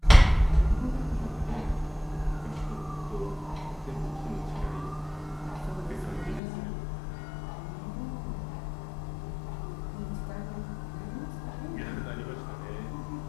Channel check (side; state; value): right; drops out; at 6.4 s